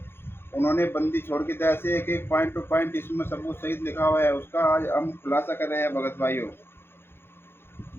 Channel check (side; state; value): right; late; 0.11 ms